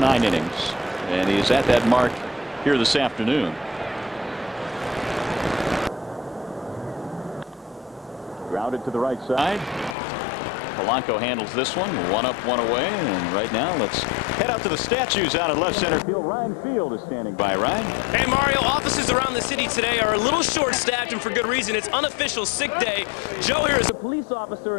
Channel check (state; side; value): drops out; right; at 10.0 s